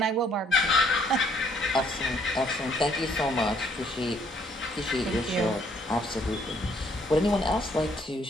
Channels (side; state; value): both; normal; correlation 0.65